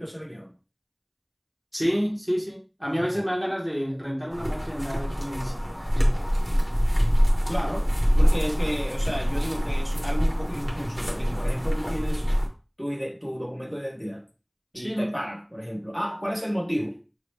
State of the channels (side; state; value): both; identical; correlation 1.00